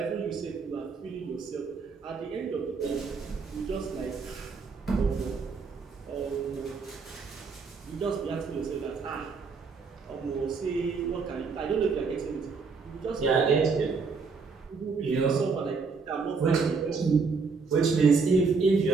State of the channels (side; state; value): left; quieter; 4.8 dB